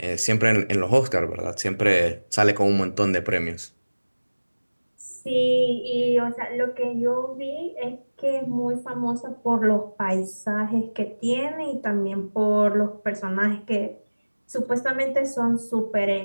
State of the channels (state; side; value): inverted; both; correlation -1.00